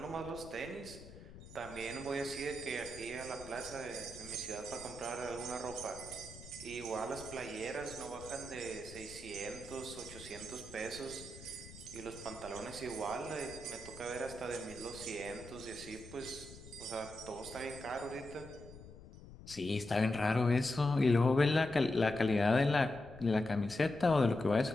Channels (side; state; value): left; noise; rumble, 16 dB below the sound